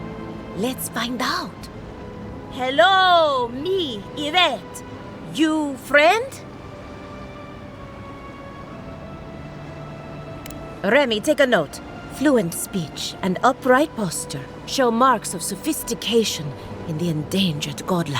Let's find out. Hello, me, Yvette. You friend? Remy, take a note. Fluent speech and upright posture show marks of sophistication in the endangered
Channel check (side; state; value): both; identical; correlation 1.00